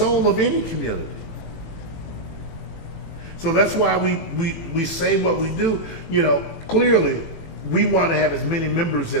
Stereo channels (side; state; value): right; late; 18 ms